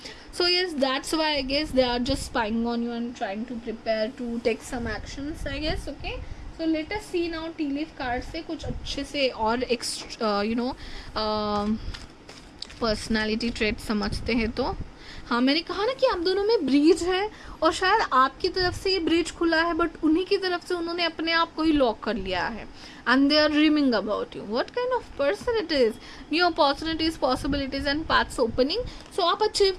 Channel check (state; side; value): identical; both; correlation 1.00